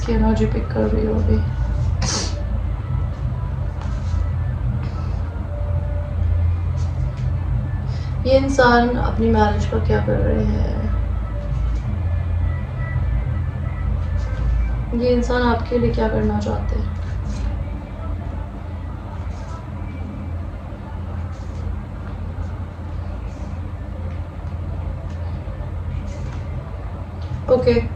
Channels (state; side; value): identical; both; correlation 1.00